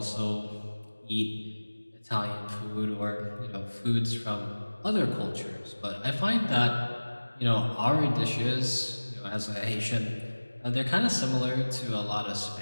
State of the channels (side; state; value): both; inverted; correlation -1.00